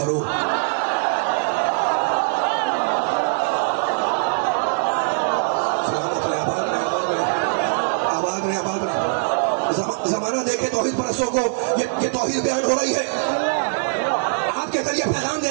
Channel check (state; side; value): silent; left; digital silence